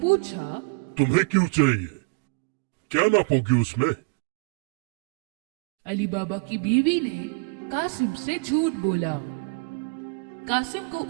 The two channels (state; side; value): quieter; left; 33.7 dB